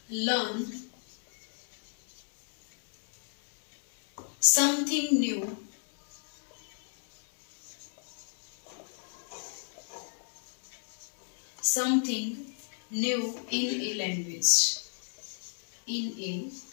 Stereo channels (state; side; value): silent; right; 56 dB below the other